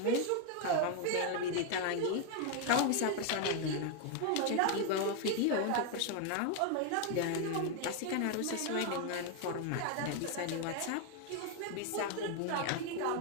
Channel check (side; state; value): both; different; correlation 0.01